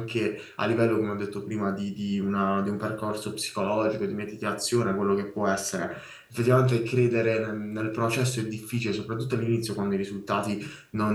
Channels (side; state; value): both; identical; correlation 1.00